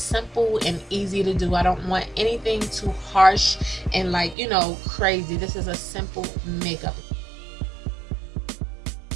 and easy to do. I don't want anything too harsh and, like, you know, crazy. This is a simple makeup.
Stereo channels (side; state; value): left; drops out; at 4.4 s